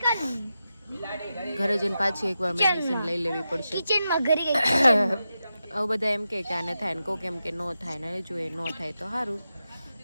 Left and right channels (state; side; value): inverted; both; correlation -0.90